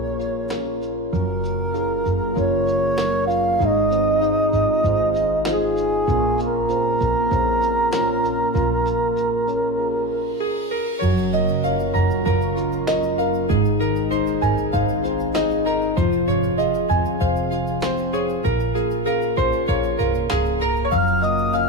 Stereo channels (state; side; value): normal; both; correlation 0.30